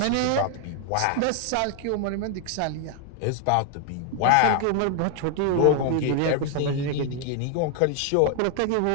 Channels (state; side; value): different; both; correlation 0.00